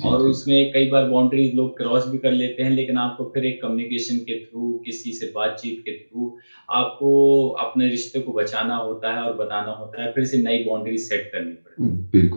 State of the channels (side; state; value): both; inverted; correlation -1.00